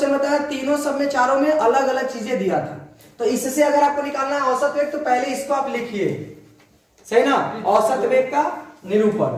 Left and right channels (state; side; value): identical; both; correlation 1.00